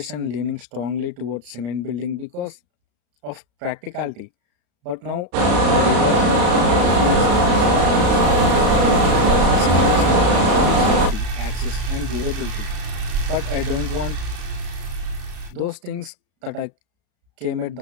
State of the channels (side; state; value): left; late; 34 ms